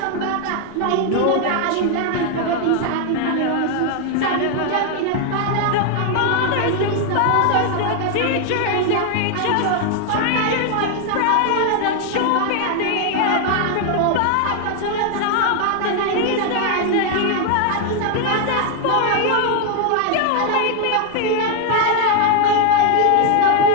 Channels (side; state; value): both; different; correlation 0.00